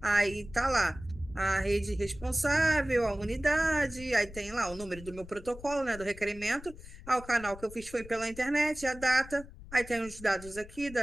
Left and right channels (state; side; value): noise; left; rumble, 16 dB below the sound